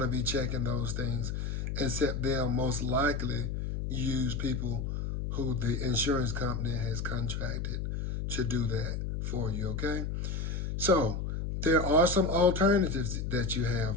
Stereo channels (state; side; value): noise; left; hum, 3 dB below the sound